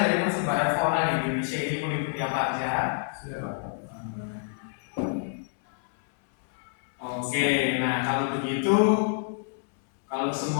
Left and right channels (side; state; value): right; silent; 60 dB below the other